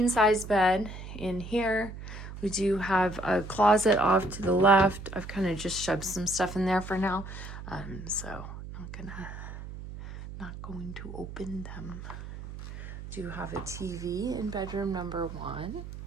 size bed in here. We do have a closet off to the left. I've kind of just shoved some stuff in there for now. So not going to open them. Do have a TV in bedroom number 1.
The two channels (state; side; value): noise; right; hum, 11 dB below the sound